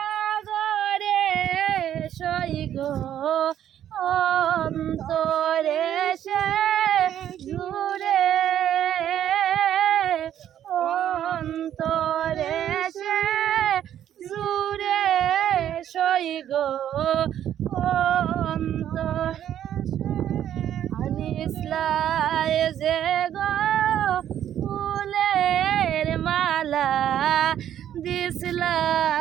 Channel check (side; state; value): left; quieter; 10.7 dB